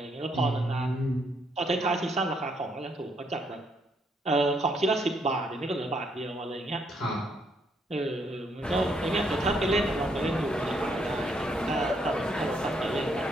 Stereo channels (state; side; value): normal; both; correlation 0.73